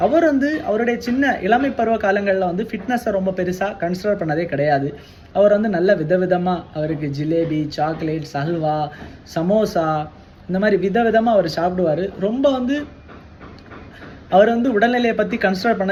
அவர் வந்து அவருடைய சின்ன இளமை பருவ காலங்களில் வந்து ஃபிட்னஸை ரொம்ப பெருசாக கன்சிடர் பண்ணதே கிடையாது. அவர் வந்து நல்ல விதவிதமாக அவருக்கு ஜிலேபி, சாக்லேட், ஹல்வா, சமோசா இந்த மாதிரி விதவிதமாக அவர் சாப்பிடுவார். ரொம்ப வந்து அவர் வந்து உடல்நிலையை பற்றி கன்சிடர்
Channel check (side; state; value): both; identical; correlation 1.00